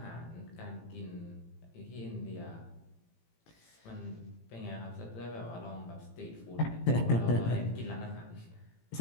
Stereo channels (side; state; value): right; late; 18 ms